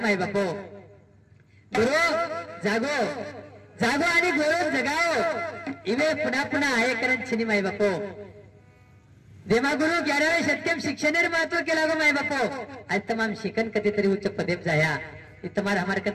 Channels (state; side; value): identical; both; correlation 1.00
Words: बापो गुरु जागो जागो आणि गोरो जगाओ इवे पुन्हा पुन्हा आहे करण छिनी माय बापो देवा गुरु 11वे सत्यम शिक्षणेर महत्व केला गो माय बापो आज तमाम शिकन कधीतरी उच्च पदेप जाया तुम्हार हमार